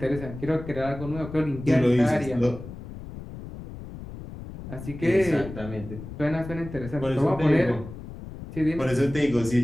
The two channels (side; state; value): left; noise; rumble, 12 dB below the sound